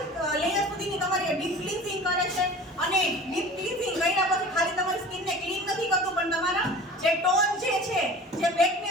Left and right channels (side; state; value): both; normal; correlation 0.40